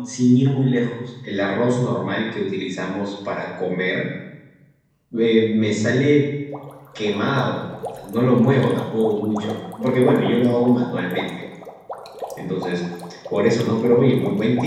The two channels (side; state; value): both; identical; correlation 1.00